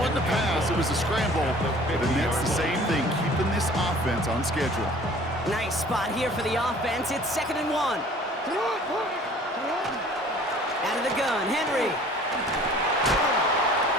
a pass. It was a scramble. And that's the same thing, keeping this offense on schedule. Nice spot here for the offense. It's 2nd and 1. Out of the gun, Henry.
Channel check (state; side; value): normal; both; correlation 0.50